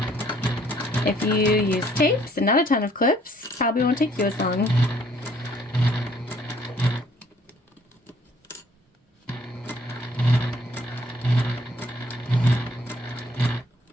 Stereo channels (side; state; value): both; normal; correlation 0.62